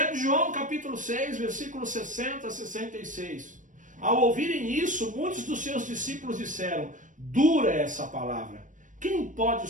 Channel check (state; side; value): late; left; 0.37 ms